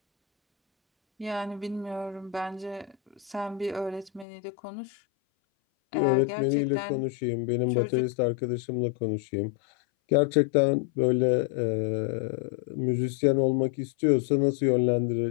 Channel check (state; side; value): drops out; right; at 4.2 s